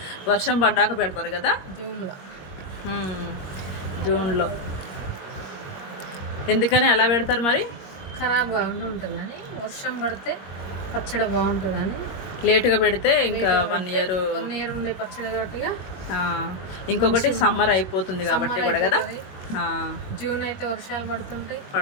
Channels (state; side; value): late; right; 21 ms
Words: వర్షం పడ్డాక పెడతారు కదా, జూన్లో. ఎందుకని అలా పెడతారు మరి? ఖరాబ్ కాకుండా ఉంటుంది కానీ, వర్షం పడితే పచ్చడి బాగుంటుంది అని. లేటుగా పెడితే ఇంకా 1 ఇయర్ ఉండే పచ్చడి కాబట్టి. ఇంకొకటి సమ్మర్ అయిపోతుంది కాబట్టి కూడా కదా. జూన్ అయితే వర్షాలు